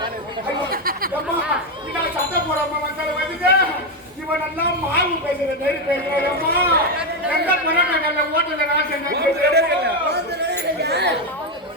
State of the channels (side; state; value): both; normal; correlation 0.07